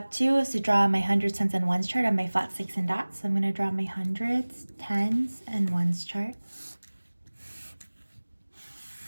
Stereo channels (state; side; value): inverted; both; correlation -1.00